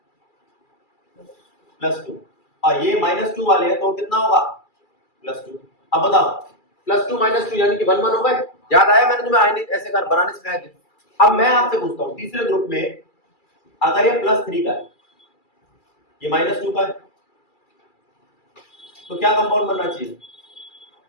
+2। और ये -2 वाले हैं तो कितना होगा, +2। अब बताओ, +2 -2 यानी कि 1 1 हो गए। याद आया, मैंने तुम्हें आयनिक ऐसे कर बनाने सिखाए थे। अब मैं आपसे पूछता हूं, तीसरे ग्रुप में अगर ये +3 का है, ये -2 का है, तो क्या कंपाउंड बनना चाहिए,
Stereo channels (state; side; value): late; right; 2.3 ms